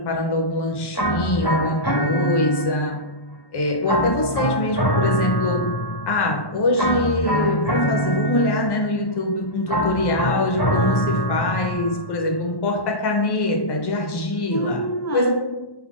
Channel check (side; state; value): right; late; 1.1 ms